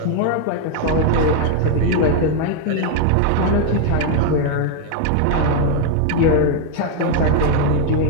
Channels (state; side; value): different; both; correlation 0.01